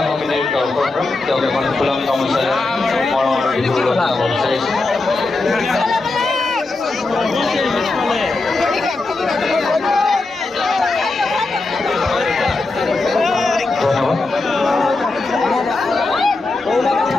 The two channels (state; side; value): quieter; right; 3.4 dB